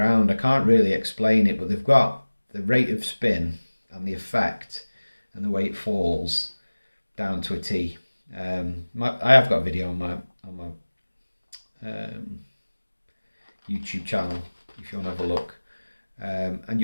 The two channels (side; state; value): both; inverted; correlation -1.00